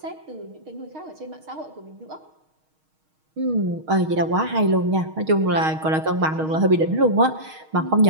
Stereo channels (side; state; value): left; late; 6.4 ms